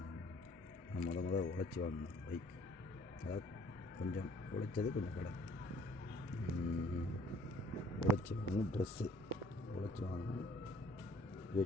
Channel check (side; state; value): both; normal; correlation 0.57